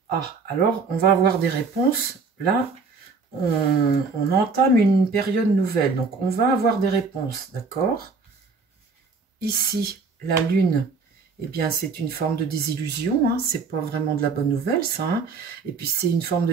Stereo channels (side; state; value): left; quieter; 4.6 dB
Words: Ah, alors on va avoir des réponses. Là, on entame une période nouvelle. Donc, on va avoir des réponses, d'accord? Ici, la lune, eh bien, c'est une forme de désillusion. Hein, c'est pas vraiment de la bonne nouvelle, ça. Hein. Et puis, c'est une forme de